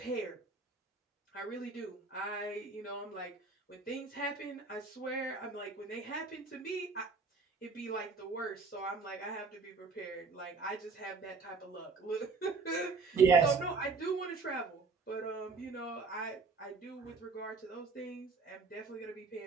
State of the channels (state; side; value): quieter; left; 4.3 dB